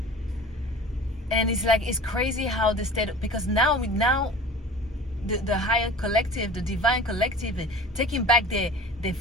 And it's like, it's crazy how the state, because now the higher collective, the divine collective, taking back their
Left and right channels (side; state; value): both; normal; correlation 0.39